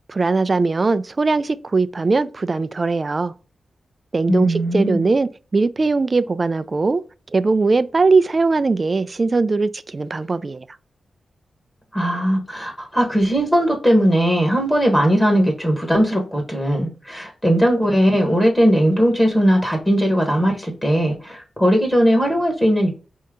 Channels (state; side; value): normal; both; correlation 0.94